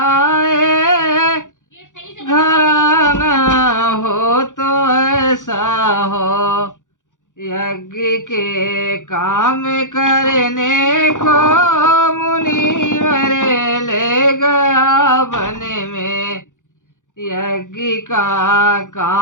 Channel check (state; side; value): late; right; 0.87 ms